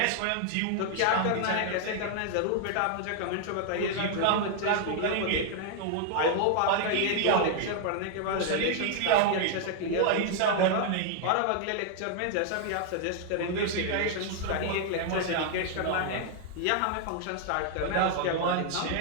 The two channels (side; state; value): both; different; correlation 0.00